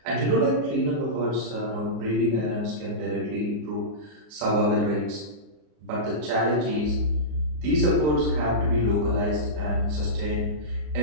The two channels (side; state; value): left; late; 33 ms